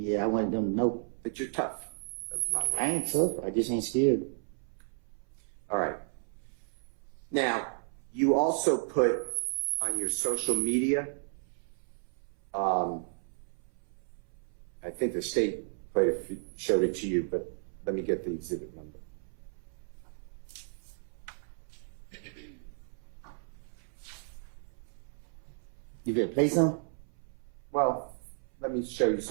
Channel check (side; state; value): left; silent; 56 dB below the other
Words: I wanted them to know. That you're tough. I ain't tough, I just ain't scared. All right. Now, you also put on your social media, I think the state showed it to you, but let me get the exhibit number. You better play some? Well, let me show you